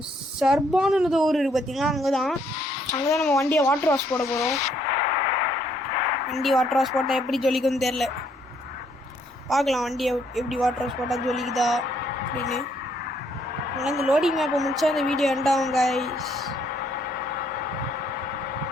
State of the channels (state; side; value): normal; both; correlation 0.68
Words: சர்பான்னு ஊர் இருக்குது பார்த்தீங்களா, அங்கே தான் நம்ம வண்டியை வாட்டர் வாஷ் போட போகிறோம். வண்டி வாட்டர் வாஷ் போட்டால் எப்படி ஜொலிக்குன்னு தெரில. பார்க்கலாம் வண்டியை எப்படி வாட்டர் வாஷ் போட்டால் ஜொலிக்குதா அப்படின்னு. அதனால் இந்த லோடிங் மேப்பை முடிச்சா இந்த வீடியோ எண்டாகும் கைஸ்.